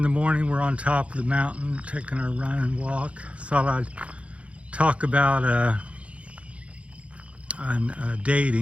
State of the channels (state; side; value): late; left; 0.062 ms